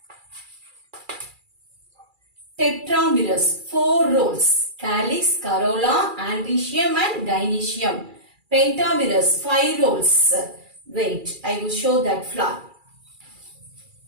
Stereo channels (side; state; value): left; late; 2.3 ms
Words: Tetramerous, 4 rows: calyx, corolla, androecium and gynoecium. Pentamerous, 5 rows. Wait, I will show that flower.